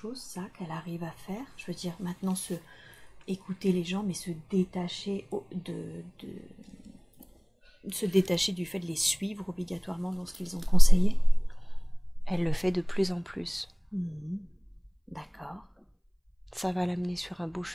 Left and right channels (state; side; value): identical; both; correlation 1.00